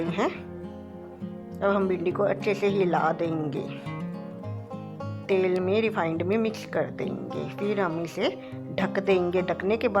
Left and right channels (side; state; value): both; identical; correlation 1.00